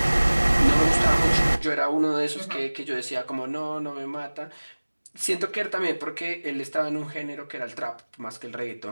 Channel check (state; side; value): inverted; both; correlation -1.00